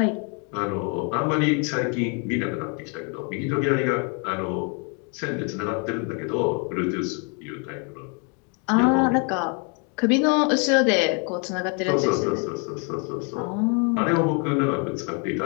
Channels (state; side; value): quieter; right; 37.1 dB